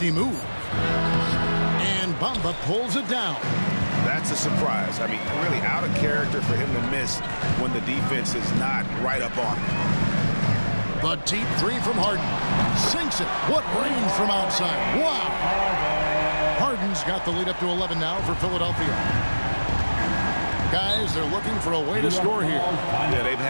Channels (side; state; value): both; inverted; correlation -1.00